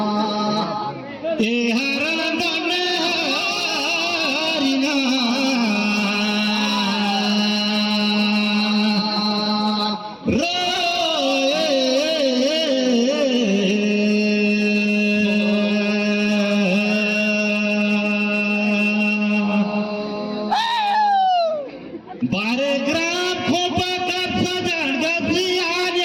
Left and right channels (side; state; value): both; identical; correlation 1.00